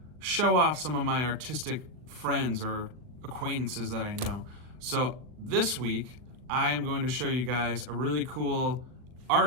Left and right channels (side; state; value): left; late; 39 ms